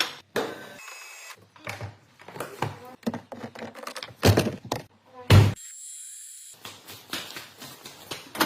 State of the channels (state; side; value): identical; both; correlation 1.00